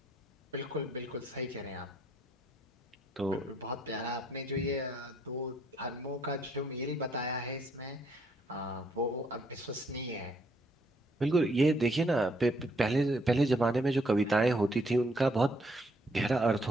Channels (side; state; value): both; normal; correlation 0.69